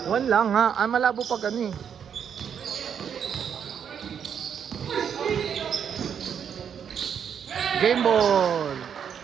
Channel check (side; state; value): left; quieter; 7.9 dB